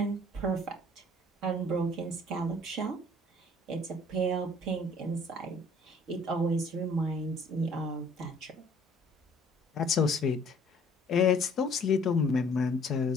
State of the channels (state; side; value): normal; both; correlation 0.56